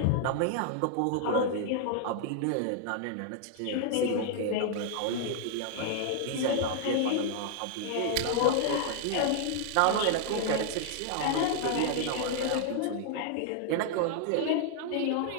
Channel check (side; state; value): both; different; correlation 0.00